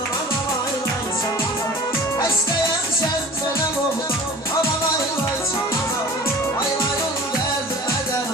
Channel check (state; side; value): normal; both; correlation 0.43